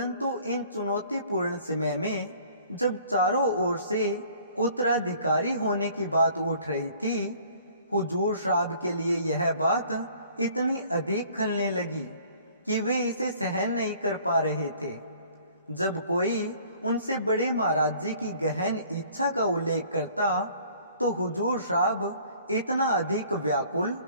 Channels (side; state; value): both; inverted; correlation -0.54